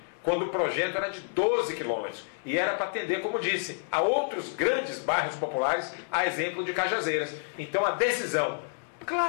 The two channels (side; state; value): right; silent; 59 dB below the other